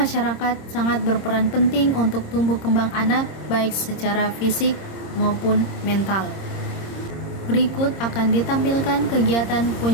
sangat berperan penting untuk tumbuh kembang anak baik secara fisik maupun mental. Berikut akan ditampilkan kegiatan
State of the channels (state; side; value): late; right; 26 ms